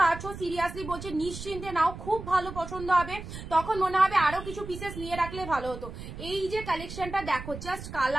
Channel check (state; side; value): noise; right; rumble, 11 dB below the sound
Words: পাচ্ছ সিরিয়াসলি বলছে নিশ্চিন্তে নাও, খুব ভালো পছন্দ হবে, তখন মনে হবে আরো কিছু পিসেস নিয়ে রাখলে ভালো হতো। এই যে কালেকশনটা দেখো, জাস্ট